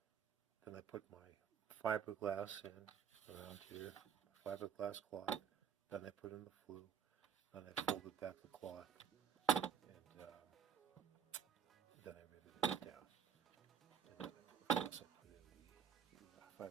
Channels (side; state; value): left; quieter; 7.7 dB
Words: Then I put my fiberglass in around here, fiberglass cloth. Then I put in the flue. Then I folded back the cloth, and then I riveted it down. And then of course I put in the